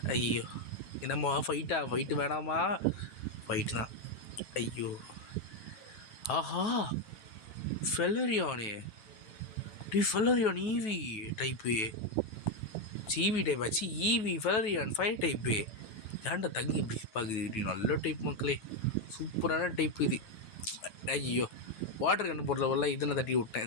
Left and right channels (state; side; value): late; right; 9.3 ms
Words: ஐயோ, என்னம்மா ஃபைட்டு வேணாமா? ஃபைட்டு தான். ஐயோ, ஆஹா, ஃபெலரியானே. Flareon Eevee type. Eevee type ஆச்சு. Eevee Flareon fire type. ஏன்டா தங்கி இப்படி பார்க்குது? நல்ல டைப் மக்களே, சூப்பரான டைப் இது. ஐயோ, வாட்டர் கண்டு போடுறவெல்லாம் இதனை தட்டி